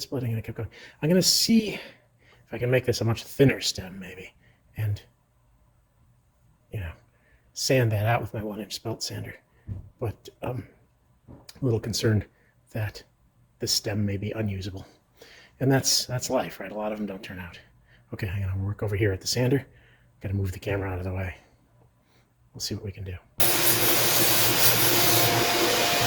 splitting and it kept going. I'm going to see if I can make this a much thinner stem, maybe, and, sand that out with my 1-inch belt sander. But I'm a little concerned that the stem may be unusable. And that's life, right? A lot of them don't turn out. Okay, I'm going to work over here at the sander. Got to move the camera out of the way. We'll see what we can do.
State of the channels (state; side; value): identical; both; correlation 1.00